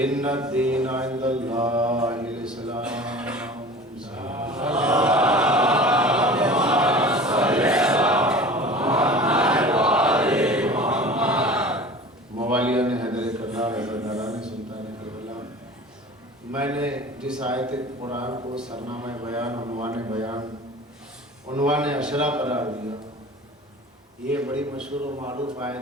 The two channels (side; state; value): both; normal; correlation 0.40